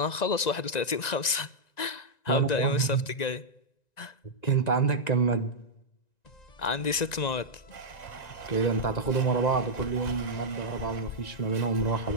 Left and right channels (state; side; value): late; right; 1.9 ms